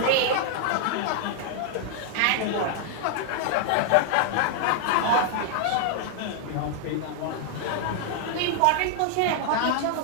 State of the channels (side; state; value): both; different; correlation 0.00